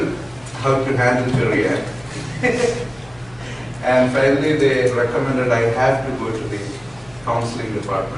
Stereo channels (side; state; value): left; noise; hum, 26 dB below the sound